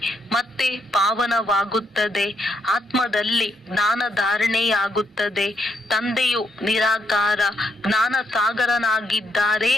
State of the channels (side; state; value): both; normal; correlation 0.77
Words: ಮತ್ತೆ ಪಾವನವಾಗುತ್ತದೆ. ಆತ್ಮದಲ್ಲಿ ಜ್ಞಾನ ಧಾರಣೆಯಾಗುತ್ತದೆ. ತಂದೆಯು ನಿರಾಕಾರ ಜ್ಞಾನ ಸಾಗರನಾಗಿದ್ದಾರೆ